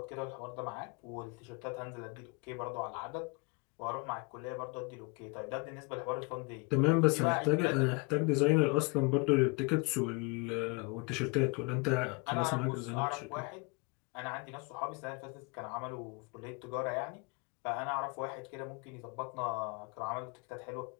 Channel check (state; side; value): quieter; right; 29.9 dB